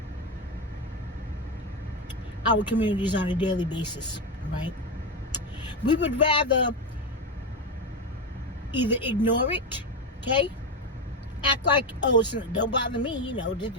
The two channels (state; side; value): normal; both; correlation 0.12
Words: our communities on a daily basis, right? We would rather either ignore it, okay? Act like, don't bother me,